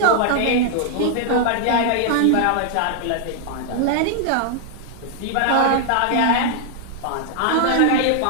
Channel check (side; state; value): both; different; correlation 0.00